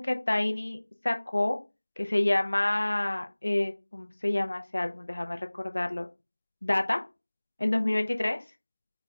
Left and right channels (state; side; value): inverted; both; correlation -1.00